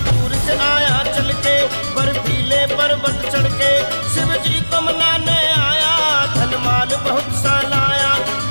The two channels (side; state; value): both; inverted; correlation -1.00